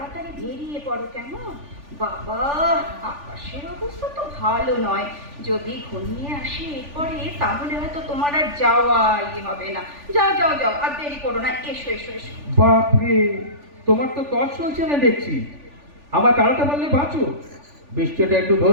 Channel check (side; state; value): left; late; 3.4 ms